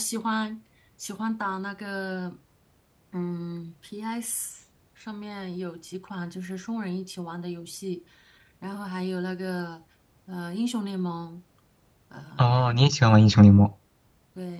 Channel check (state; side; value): identical; both; correlation 1.00